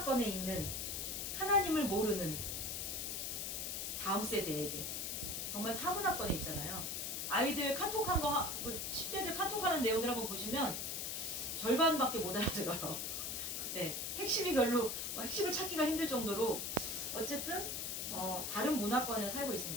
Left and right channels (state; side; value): noise; left; hiss, 3 dB below the sound